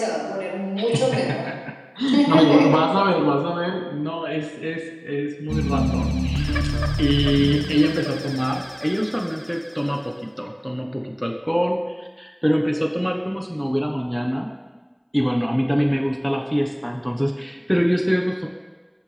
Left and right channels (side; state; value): both; identical; correlation 1.00